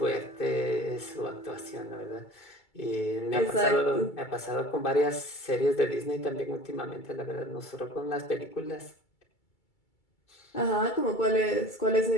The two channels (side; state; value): right; late; 2.3 ms